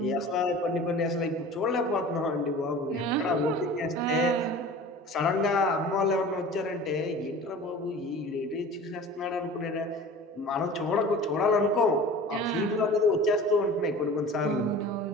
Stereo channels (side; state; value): both; normal; correlation 0.40